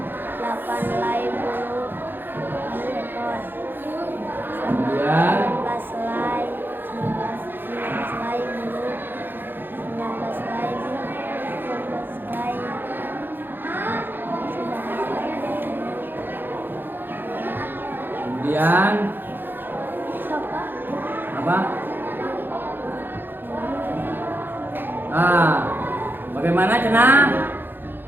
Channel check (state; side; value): late; left; 0.097 ms